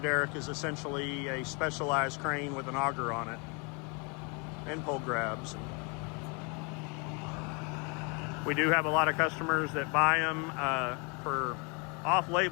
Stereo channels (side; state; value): right; quieter; 32.6 dB